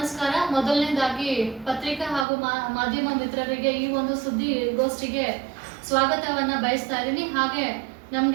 ಮೊದಲನೇದಾಗಿ ಪತ್ರಿಕಾ ಹಾಗೂ ಮಾಧ್ಯಮ ಮಿತ್ರರಿಗೆ ಈ ಒಂದು ಸುದ್ದಿಗೋಷ್ಠಿಗೆ ಸ್ವಾಗತವನ್ನ ಬಯಸ್ತಾ ಇದ್ದೀನಿ. ಹಾಗೆ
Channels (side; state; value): left; drops out; at 2.2 s